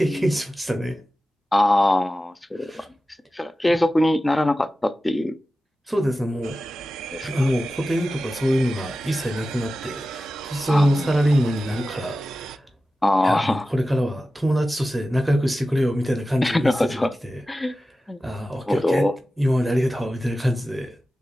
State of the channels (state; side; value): normal; both; correlation 0.94